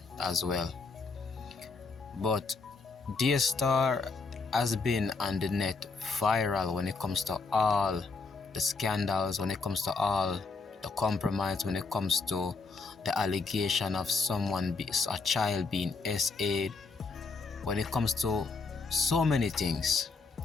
as well. But DAYSTAR has been on the net viral when it comes to all the scandals, when it comes to all the compromise, when it comes to the allegation of a child being SA'd, when it comes to so many things.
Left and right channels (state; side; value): quieter; right; 4.2 dB